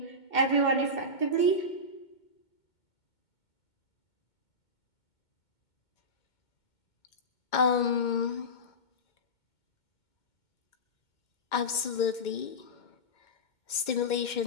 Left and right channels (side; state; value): right; late; 2.2 ms